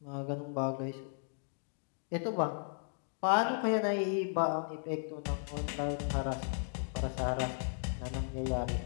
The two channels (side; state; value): right; silent; digital silence